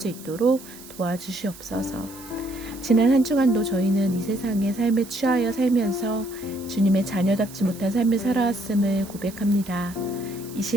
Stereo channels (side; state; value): right; noise; hiss, 18 dB below the sound